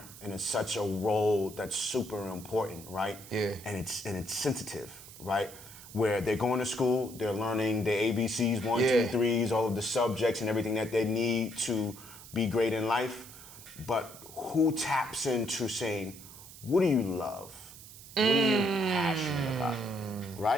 and it's such a role that's super important, right? Yeah. And it's sensitive, right? Where they're going to school, they're learning the ABCs, 1, 2, 3s, all of the subjects and everything that they need to be great in life. But who taps into saying, what do you love? What are you passionate about?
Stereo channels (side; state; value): right; noise; hiss, 17 dB below the sound